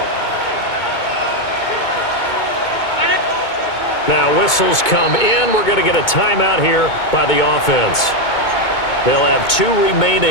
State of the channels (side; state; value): right; late; 2.2 ms